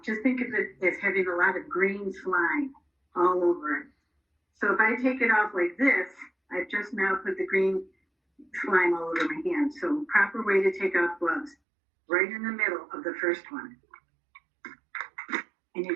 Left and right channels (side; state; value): left; drops out; at 11.6 s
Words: just think of it as having a lot of green slime all over it. So if I take it off like this, I've just now put the green slime all over my hand. So proper way to take off gloves, right in the middle of the first one. And you